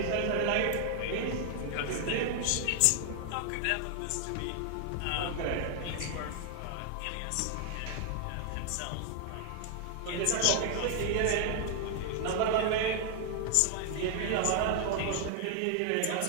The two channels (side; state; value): both; different; correlation 0.00